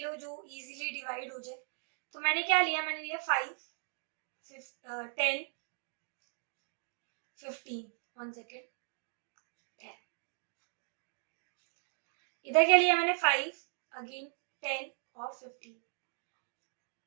जो इजीली डिवाइड हो जाए। तो मैंने क्या लिया, मैंने लिया 5 10 15, 1 सेकेंड 10। इधर क्या लिया मैंने 5 अगेन 10 और 15,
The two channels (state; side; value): silent; left; 53 dB below the other